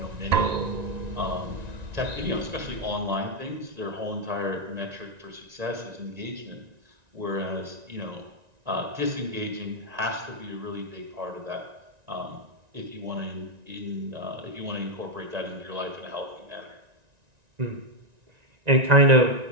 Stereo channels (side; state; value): left; late; 1.9 ms